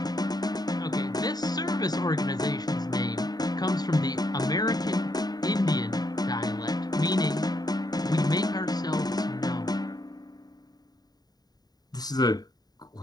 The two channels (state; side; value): late; right; 0.19 ms